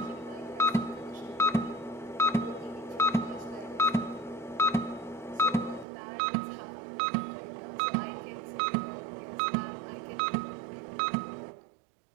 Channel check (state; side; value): drops out; left; at 5.9 s